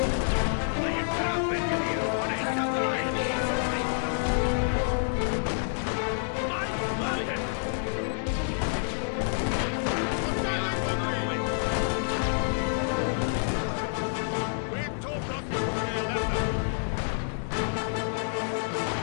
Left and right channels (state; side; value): silent; right; digital silence